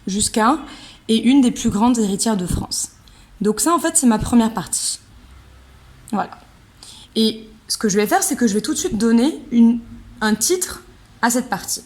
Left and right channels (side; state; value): both; identical; correlation 1.00